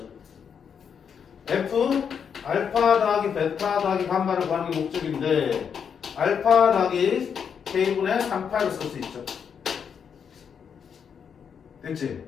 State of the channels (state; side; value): quieter; right; 7.2 dB